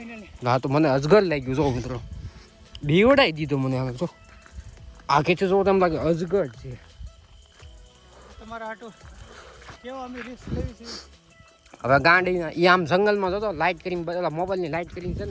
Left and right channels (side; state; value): both; identical; correlation 1.00